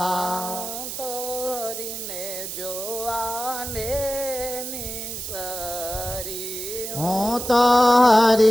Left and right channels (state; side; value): noise; right; hiss, 7 dB below the sound